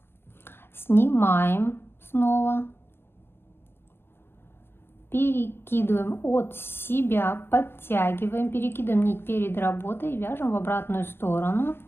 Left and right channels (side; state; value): right; late; 0.11 ms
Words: снимаем снова, перекидываем от себя, подтягиваем, перекидываем нить перед работой и вяжем в обратную сторону